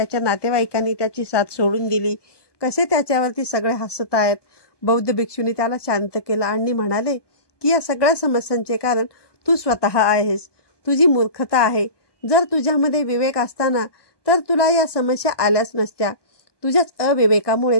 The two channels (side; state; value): right; late; 1.2 ms